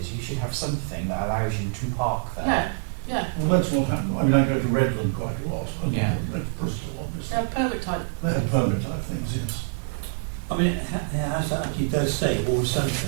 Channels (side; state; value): left; silent; digital silence